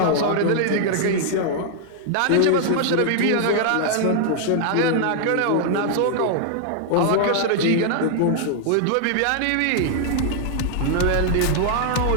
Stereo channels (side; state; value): both; different; correlation 0.00